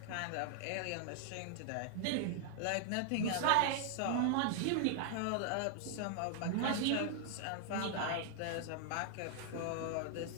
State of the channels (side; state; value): both; different; correlation 0.00